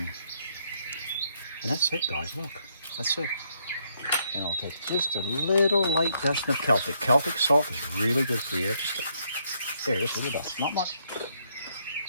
And that's it, guys. Look, that's it. And I'll take just a little light dust of Celtic. Celtic salt is really good for you. Just a little dust. Not much.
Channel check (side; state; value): both; inverted; correlation -0.73